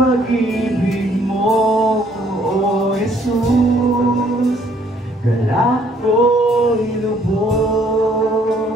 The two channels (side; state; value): both; normal; correlation 0.64